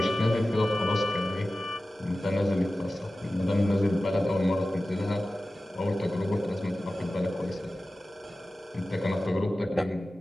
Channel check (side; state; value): both; normal; correlation 0.95